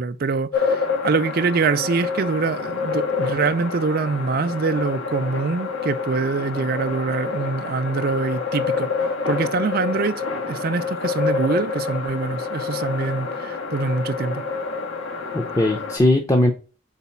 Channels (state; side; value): normal; both; correlation 0.42